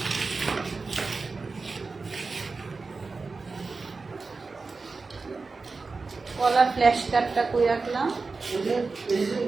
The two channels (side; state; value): left; quieter; 4.1 dB